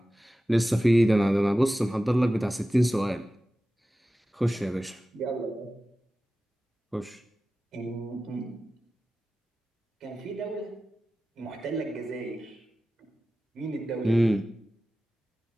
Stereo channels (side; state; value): both; normal; correlation 0.95